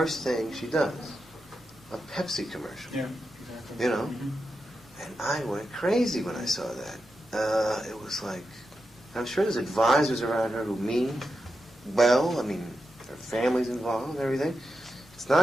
thing she does? A Pepsi commercial. Yeah, exactly. You know? Mm-hmm. And I went crazy when I saw that. It was like, I'm sure there's advisors around her who mean well. I mean, her family's involved and everything. It's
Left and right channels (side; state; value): both; normal; correlation 0.88